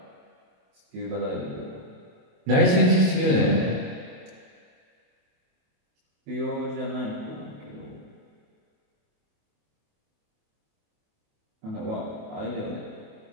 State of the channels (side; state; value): left; late; 27 ms